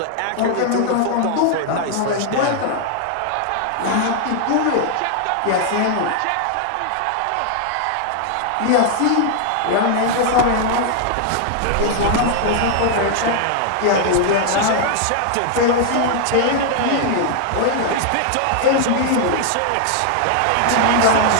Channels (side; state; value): both; different; correlation 0.00